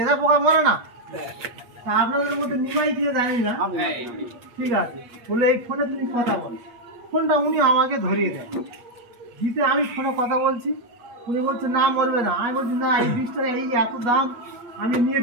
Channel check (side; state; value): left; late; 8.3 ms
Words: পোকা মরে না। তা আপনাদের মধ্যে নিমাই দিয়ে জানি না, ঠিক আছে বলে এই ফোনে তুমি কথা বলো। ফোনটা উনি আমাকে ধরিয়ে দেয়, দিতে আমি ফোনে কথা বলছি, উনি বলছে না মরবে না। আমি বলছি না এই বীজটা এই এত দাম আমি নিয়ে